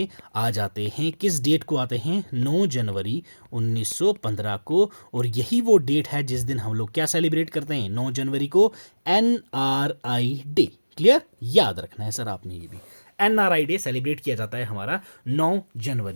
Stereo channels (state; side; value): inverted; both; correlation -1.00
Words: आ जाते हैं। किस डेट को आते हैं, 9 जनवरी 1915 को। और यही वो डेट है जिस दिन हम लोग क्या सेलिब्रेट करते हैं, 9 जनवरी को NRI डे। क्लियर, याद रखना है सर आपने ये भी। NRI डे सेलिब्रेट किया जाता है हमारा 9